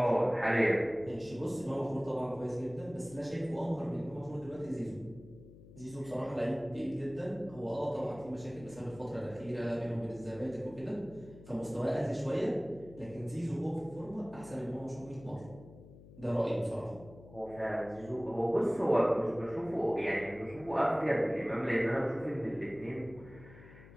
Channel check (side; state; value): left; noise; hum, 19 dB below the sound